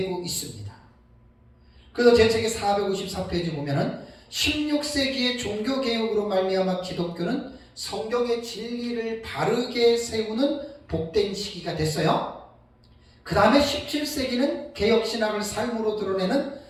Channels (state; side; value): identical; both; correlation 1.00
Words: 있습니다. 그래서 제 책의 454페이지 보면은 16세기의 종교개혁으로 말미암아 기독교는 성경의 진리를 바르게 세우는 복된 시기가 됐어요. 그 다음에 17세기는 개혁신학을 삶으로 드러내는